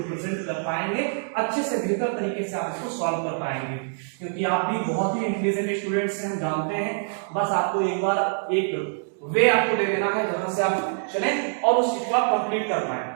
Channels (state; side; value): silent; left; digital silence